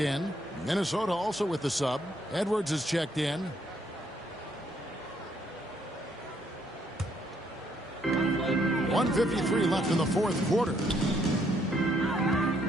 Minnesota also with the sub. Edwards is checked in. .153 left in the 4th quarter.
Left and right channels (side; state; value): both; normal; correlation 0.70